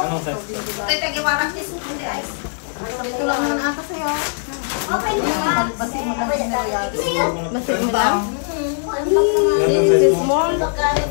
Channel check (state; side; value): silent; right; digital silence